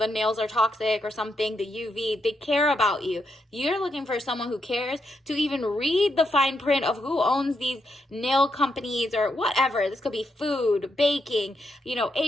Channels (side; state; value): both; normal; correlation 0.81